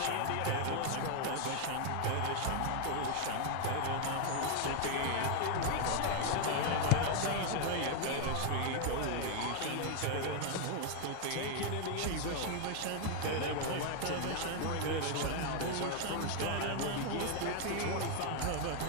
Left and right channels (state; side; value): different; both; correlation 0.00